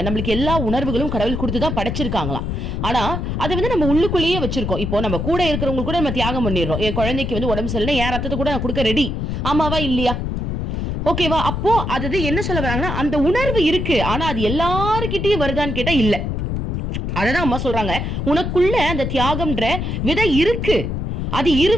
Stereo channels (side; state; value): left; noise; rumble, 2 dB below the sound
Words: நம்மளுக்கு எல்லா உணர்வுகளும் கடவுள் கொடுத்துதான் படைச்சிருக்காங்களாம். ஆனா அதை நம்ம உள்ளுக்குள்ளேயே வச்சிருக்கோம். இப்போ நம்ம கூட இருக்கிறவங்க கூட நம்ம தியாகம் பண்ணிடுறோம். என் குழந்தைக்கு உடம்பு சரியில்லை, என் ரத்தத்தை கூட நான் கொடுக்க ரெடி. ஆமாவா இல்லையா? ஓகேவா? அப்போ அது என்ன சொல்ல வராங்கன்னா, அந்த உணர்வு இருக்கு, ஆனா அது எல்லாருக்கிட்டையும் வருதான்னு கேட்டா இல்ல. அததான் அம்மா சொல்றாங்க, உனக்குள்ள அந்த தியாகம்ன்ற விதை இருக்கு, அது